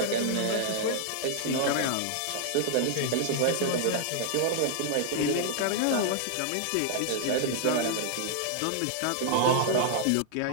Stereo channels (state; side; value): different; both; correlation 0.00